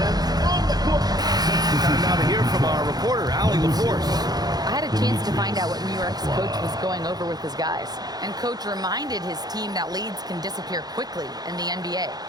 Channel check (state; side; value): late; left; 0.19 ms